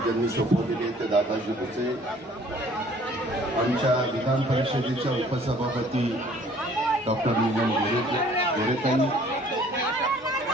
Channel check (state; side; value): normal; both; correlation 0.55